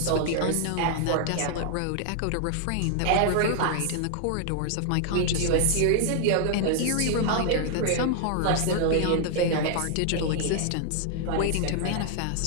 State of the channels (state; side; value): different; both; correlation 0.00